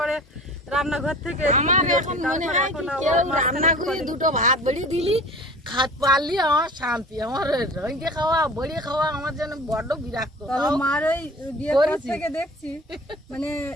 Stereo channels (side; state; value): both; normal; correlation 0.41